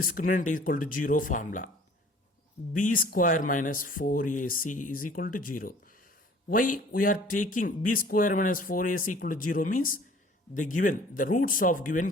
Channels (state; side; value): normal; both; correlation 0.51